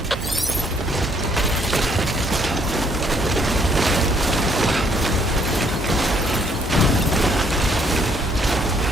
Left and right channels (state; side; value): normal; both; correlation 0.66